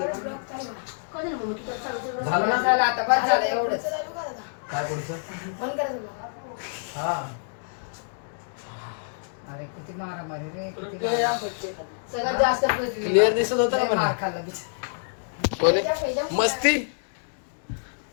चालू करा. झालं ना झालं आता बस झालं एवढंच. चालू करा आता. काय पुढचं बंद करा ब्लॉग. हा अरे किती मारामारी रे किती मारामारी. सगळ्यात जास्त पृथ्वी. क्लिअर दिसत होतं का लय मला? मार खाल्ला बिचारा. कोणी मस्ती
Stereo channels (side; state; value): right; silent; digital silence